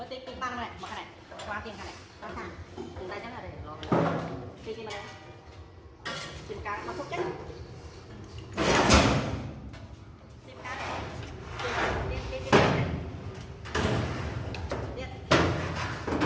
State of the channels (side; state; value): both; identical; correlation 1.00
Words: tiền băng này mà cái này qua tiền cái này qua thằng từ đây chắc là để lo tiền này tiền cá nó phốt chết tiền cá tiền